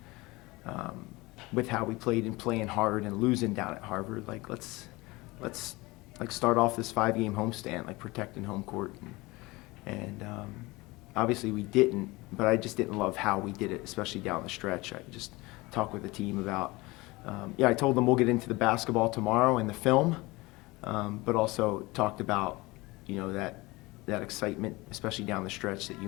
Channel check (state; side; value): quieter; right; 22.2 dB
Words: with how we played and playing hard and losing down at Harvard. Like, let's start off this 5-game homestand, like protecting home court. And obviously we didn't, but I just didn't love how we did it, especially down the stretch. I just talked with the team about, I told them we'll get into the basketball tomorrow and the film, but also talked about, that excitement, especially down the stretch that